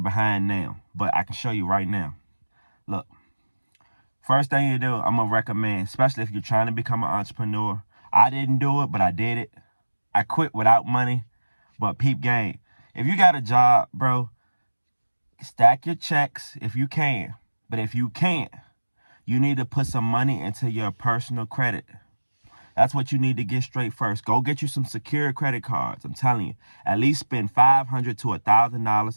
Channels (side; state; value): both; inverted; correlation -1.00